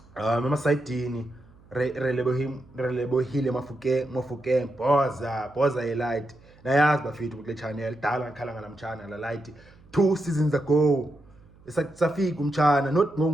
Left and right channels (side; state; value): right; noise; hum, 26 dB below the sound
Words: emasidini Relebohile Mofokeng boza light nayazi bafethu kule channel dala ngikhala ngalamtshana la light 2 seasons ago safika umtshana not